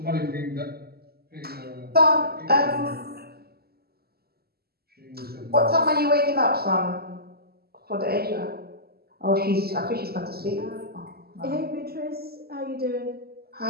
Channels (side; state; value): left; late; 0.46 ms